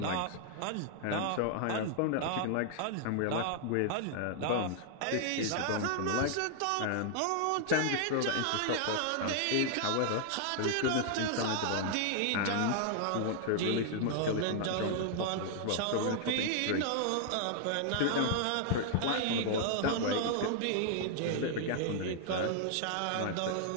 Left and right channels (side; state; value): both; different; correlation 0.00